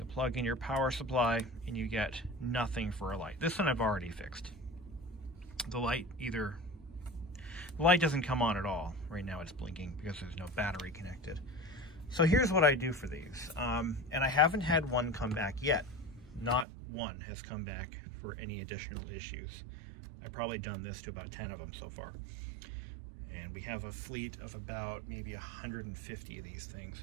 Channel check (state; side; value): drops out; left; at 16.7 s